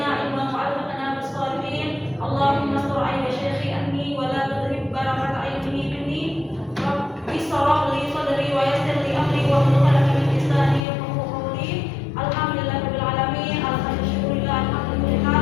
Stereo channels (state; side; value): drops out; right; at 10.9 s